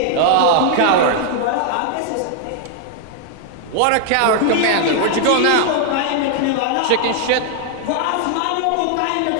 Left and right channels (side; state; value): both; different; correlation 0.00